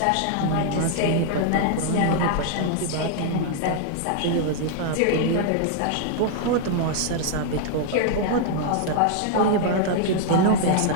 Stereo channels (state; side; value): different; both; correlation 0.00